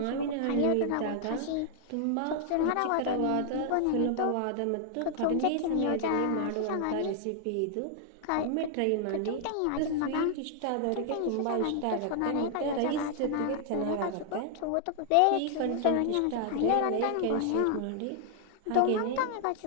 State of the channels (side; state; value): both; different; correlation 0.00